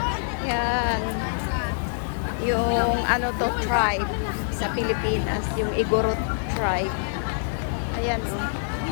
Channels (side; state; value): right; silent; digital silence